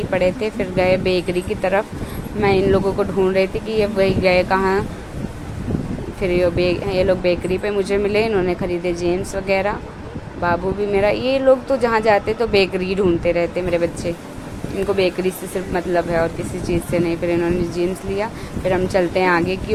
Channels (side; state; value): both; identical; correlation 1.00